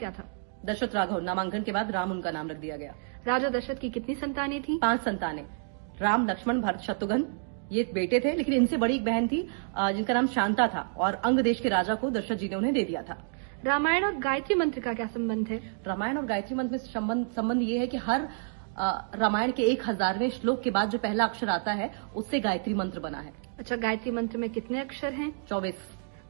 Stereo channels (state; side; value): silent; left; digital silence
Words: था? दशरथ राघव। नामांकन के बाद राम उनका नाम रख दिया गया। राजा दशरथ की कितनी संतानें थी? 5 संतानें। राम, लक्ष्मण, भरत, शत्रुघ्न ये बेटे थे, लेकिन इनसे बड़ी एक बहन थी जिनका नाम शांता था और अंग देश के राजा को दशरथ जी ने उन्हें दे दिया था। रामायण और गायत्री मंत्र का क्या संबंध है? रामायण और गायत्री मंत्र में संबंध ये है कि हर रामायण के 1000वें श्लोक के बाद जो पहला अक्षर आता है उससे गायत्री मंत्र बना है। अच्छा, गायत्री मंत्र में कितने अक्षर हैं? 24।